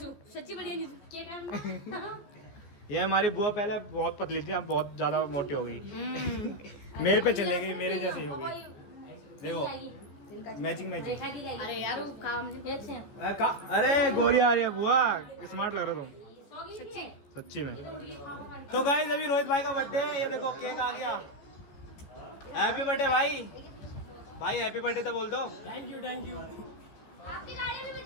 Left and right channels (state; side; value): late; right; 14 ms